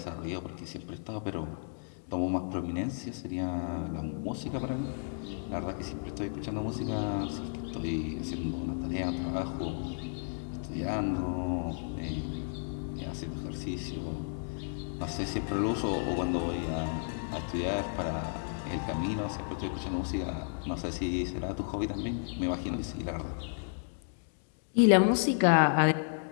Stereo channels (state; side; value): silent; right; digital silence